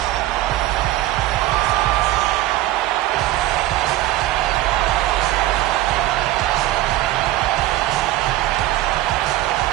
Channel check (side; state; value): left; quieter; 15.7 dB